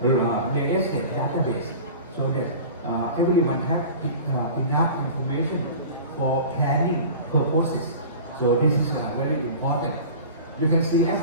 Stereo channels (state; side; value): inverted; both; correlation -0.38